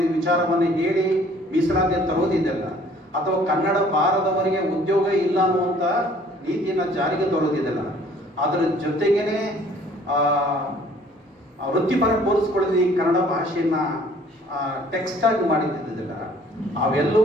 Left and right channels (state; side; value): normal; both; correlation 0.56